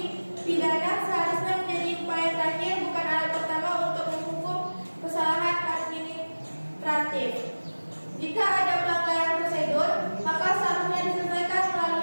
pidana seharusnya menjadi upaya terakhir, bukan alat pertama untuk menghukum kesalahan administratif. Jika ada pelanggaran prosedur, maka seharusnya diselesaikan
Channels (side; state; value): both; inverted; correlation -1.00